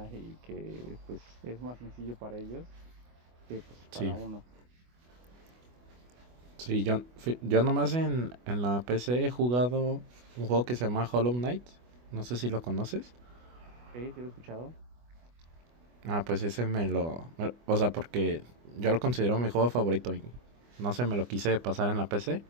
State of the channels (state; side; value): late; left; 24 ms